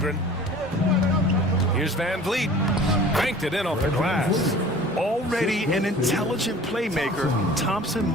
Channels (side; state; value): both; normal; correlation 0.45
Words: Here's VanVleet. Banked it in off the glass. Already an intelligent playmaker, Thompson